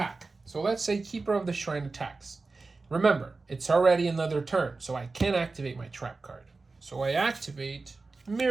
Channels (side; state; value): left; quieter; 3.8 dB